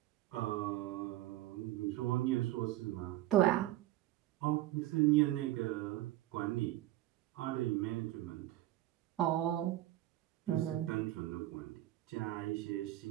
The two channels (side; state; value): left; quieter; 15.3 dB